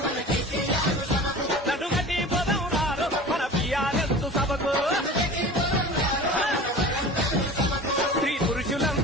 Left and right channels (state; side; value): normal; both; correlation 0.38